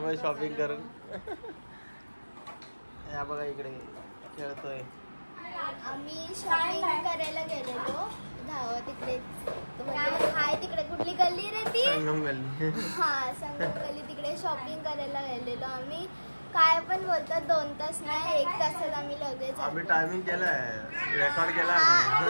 शॉपिंग करून या बघा इकडे खेळतोय. आम्ही शॉपिंग करायला गेलेलो तिकडे हाय तिकडे कुठली गल्ली रे ती संगम गल्ली. हा संगम गल्ली तिकडे शॉपिंग करायला गेलेलो आम्ही. काय पण बोलतात 2 तास नाही 1 तासात आम्ही लगेच आम्ही टायमिंग केलाय, रेकॉर्ड केला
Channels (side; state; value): both; inverted; correlation -1.00